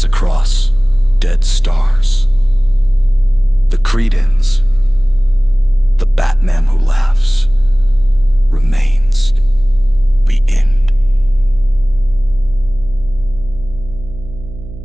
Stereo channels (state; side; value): noise; right; hum, 15 dB below the sound